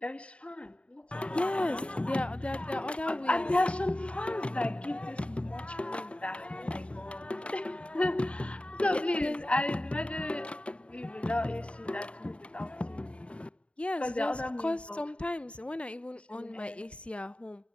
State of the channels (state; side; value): late; right; 0.060 ms